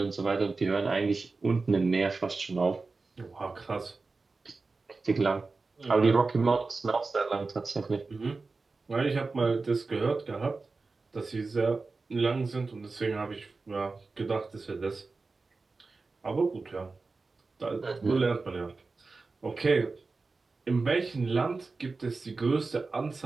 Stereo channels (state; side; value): quieter; left; 3.9 dB